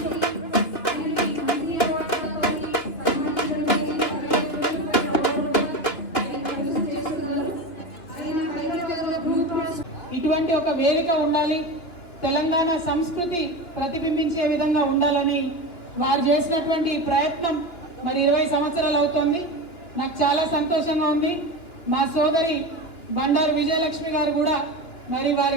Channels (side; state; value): right; late; 3.1 ms